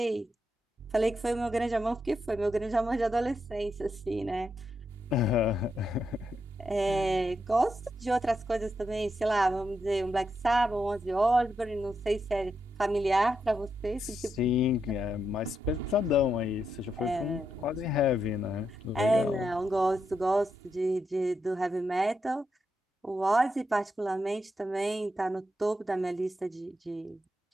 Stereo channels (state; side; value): normal; both; correlation 0.83